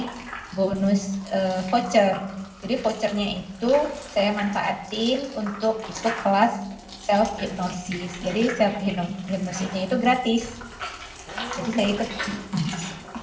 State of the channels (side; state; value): both; identical; correlation 1.00